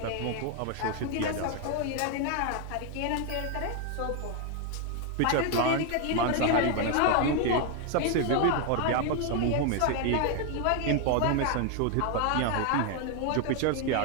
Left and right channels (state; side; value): different; both; correlation 0.00